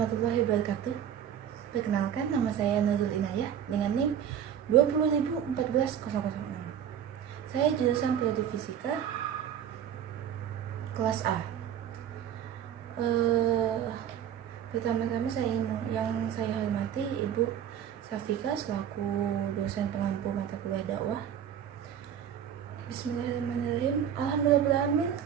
wabarakatuh. Perkenalkan, nama saya Nurul Inayah dengan NIM 20.014.006. Saya jurusan Prodi Fisika kelas A. Pertama-tama yang saya hormati Ibu Safika selaku dosen pengampu mata kuliah dakwah. Bismillahirrahmanirrahim. Alhamdulillahirrahmanirrahim.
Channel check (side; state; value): left; quieter; 9.3 dB